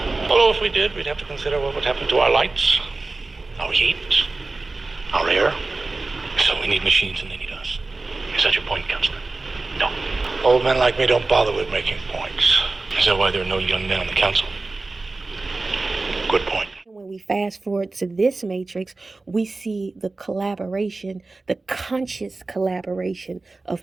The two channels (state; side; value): quieter; left; 3.4 dB